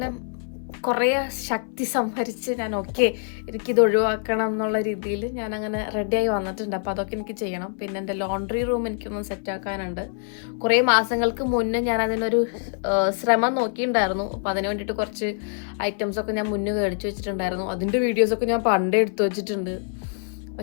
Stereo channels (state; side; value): silent; right; 62 dB below the other